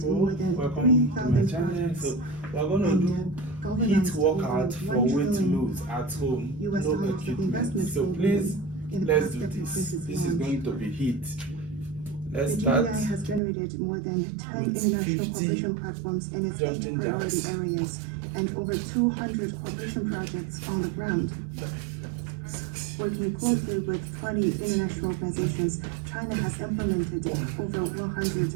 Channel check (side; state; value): left; drops out; at 13.4 s